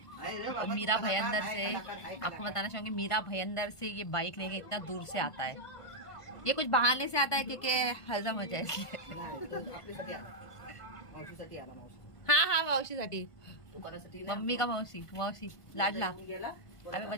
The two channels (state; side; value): late; right; 1.5 ms